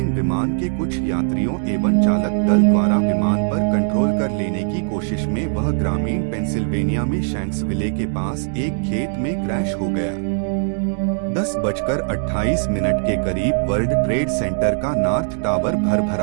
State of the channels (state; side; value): silent; left; digital silence